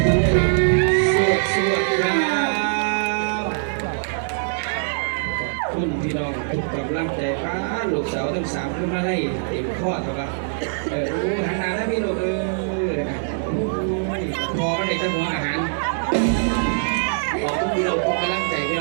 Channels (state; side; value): silent; left; digital silence